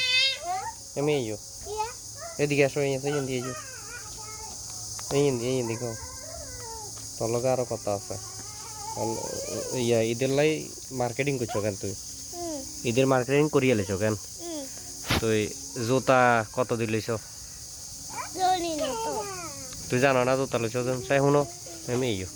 আমি যাও, এদিকে আসো, এই এদিকে যাও, এই এদিকে তোর লগে আরো কথা আছে। ইয়া ঈদের লাই মার্কেটিং করছো কেন তুই? ঈদের মার্কেটিং করিয়ে লেছো কেন তুই? জুতা কত দিলিছ তুই জানো না? জুতা লেছো চাই শুনো আমি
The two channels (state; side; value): identical; both; correlation 1.00